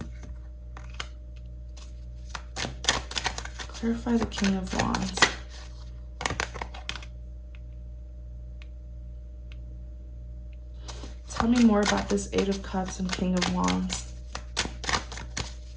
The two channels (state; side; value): identical; both; correlation 1.00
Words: Clarify the King of Wands. Tell me more about this Eight of Cups and King of Wands.